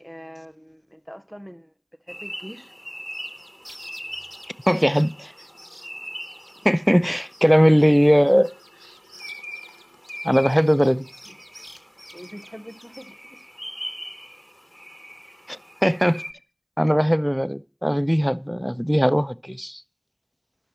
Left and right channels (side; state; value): both; identical; correlation 1.00